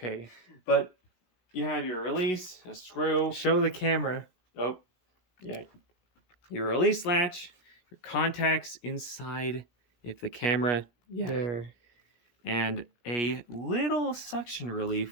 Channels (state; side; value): late; right; 17 ms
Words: But you have your release, a screw. Show the camera. Oh, yeah. Your release latch, your contacts inside, if the camera, yeah. There. And a little suction